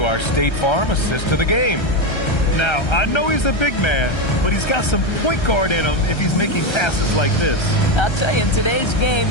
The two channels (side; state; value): right; late; 1.3 ms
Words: our State Farm assist to the game. Now, I know he's a big man, but he's got some point guard in him if he's making passes like this. I'll tell you, in today's game,